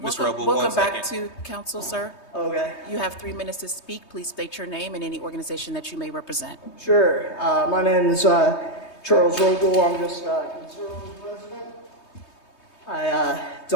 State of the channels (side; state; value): right; late; 3.2 ms